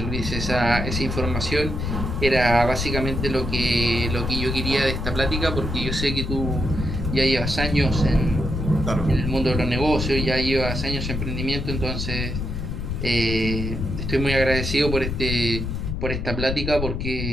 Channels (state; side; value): noise; left; rumble, 3 dB below the sound